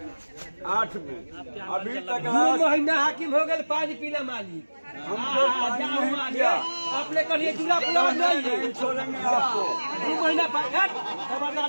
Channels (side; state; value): both; inverted; correlation -1.00